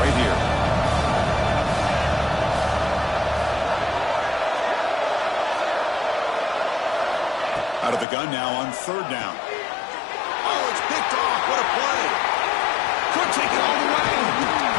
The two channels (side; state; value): right; drops out; at 8.1 s